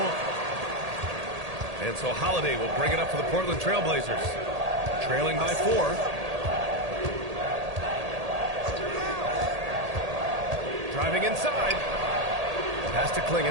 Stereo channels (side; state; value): left; late; 1.8 ms